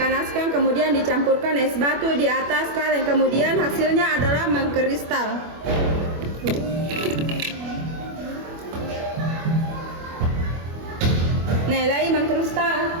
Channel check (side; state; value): left; late; 25 ms